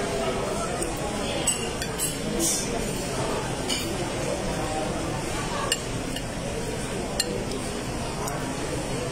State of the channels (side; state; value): both; identical; correlation 1.00